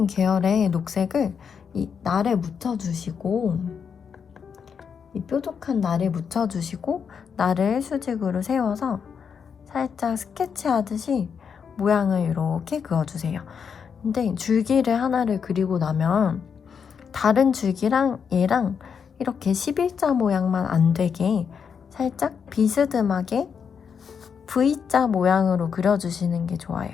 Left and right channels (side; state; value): right; quieter; 6.7 dB